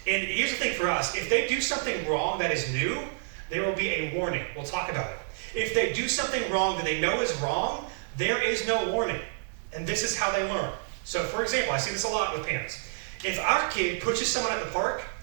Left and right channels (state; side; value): silent; left; digital silence